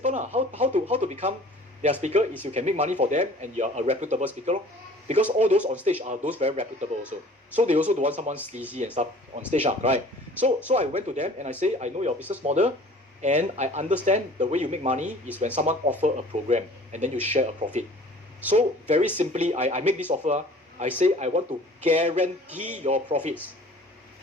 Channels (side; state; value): both; normal; correlation 0.48